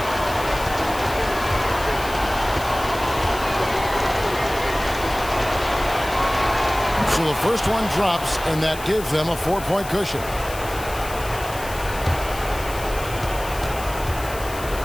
So the first one drops, and that gives them a 4-point cushion.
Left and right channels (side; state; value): left; noise; hiss, 13 dB below the sound